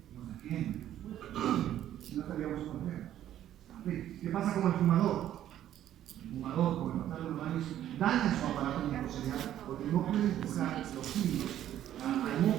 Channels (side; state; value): left; quieter; 11.8 dB